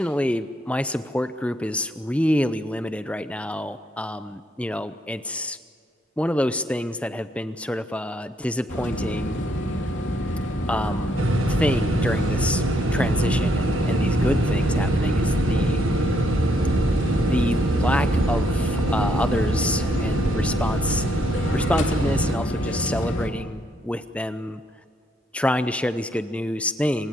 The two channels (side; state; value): both; normal; correlation 0.72